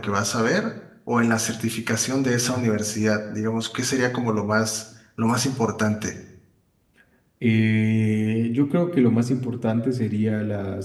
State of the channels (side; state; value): both; identical; correlation 1.00